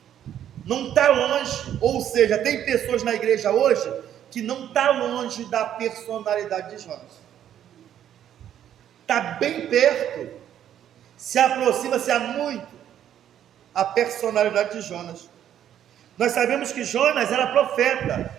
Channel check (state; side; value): quieter; left; 10.4 dB